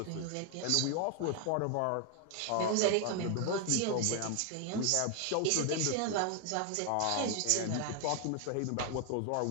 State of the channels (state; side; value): different; both; correlation 0.01